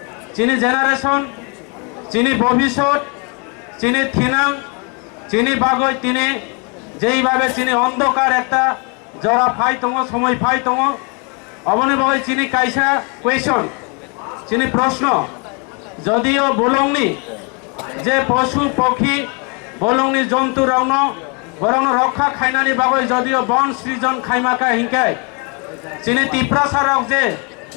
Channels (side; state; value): right; quieter; 34.2 dB